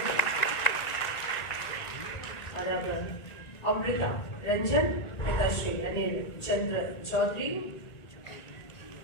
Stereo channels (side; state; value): right; late; 1.9 ms